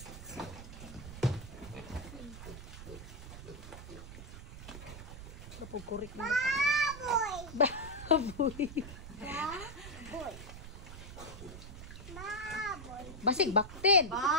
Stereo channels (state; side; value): noise; right; rumble, 12 dB below the sound